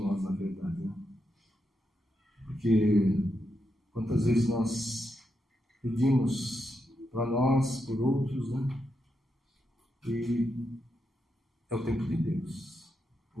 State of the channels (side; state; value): both; normal; correlation 0.84